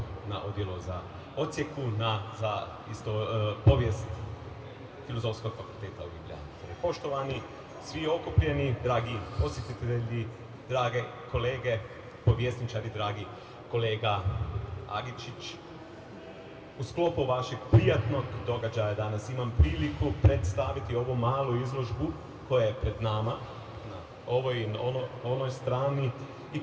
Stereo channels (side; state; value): both; identical; correlation 1.00